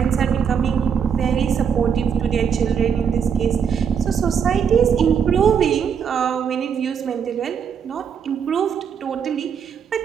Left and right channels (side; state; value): left; quieter; 7.3 dB